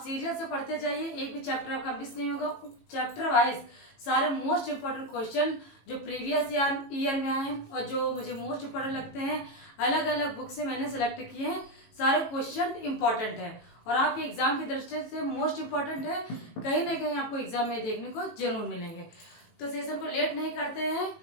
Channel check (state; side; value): late; right; 18 ms